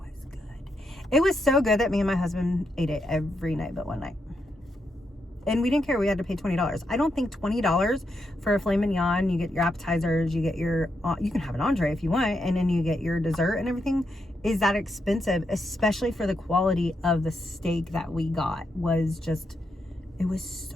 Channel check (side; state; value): both; normal; correlation 0.82